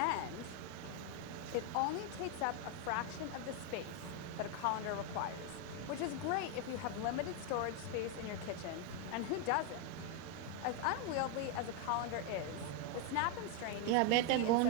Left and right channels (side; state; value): both; different; correlation 0.01